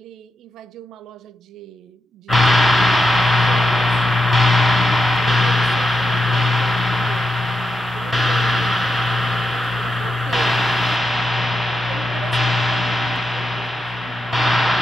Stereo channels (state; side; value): normal; both; correlation 0.87